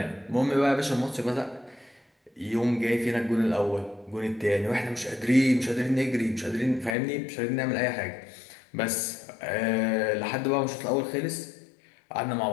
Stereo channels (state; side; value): drops out; right; at 7.0 s